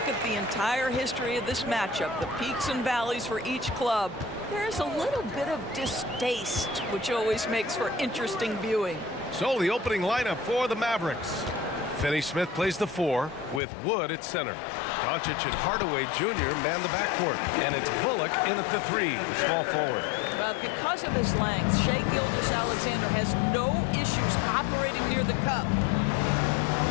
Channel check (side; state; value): right; drops out; at 13.6 s